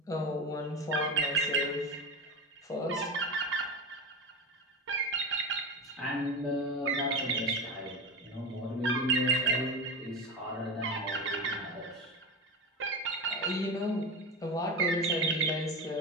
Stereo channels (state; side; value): normal; both; correlation 0.23